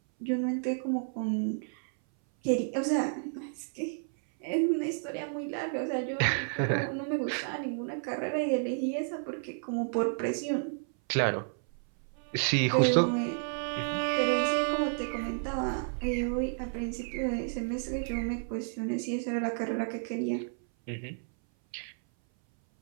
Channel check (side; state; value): left; silent; 57 dB below the other